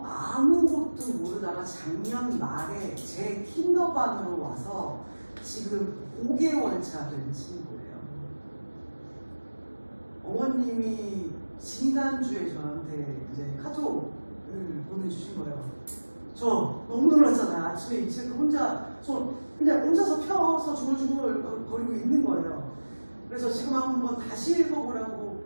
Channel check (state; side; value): inverted; both; correlation -1.00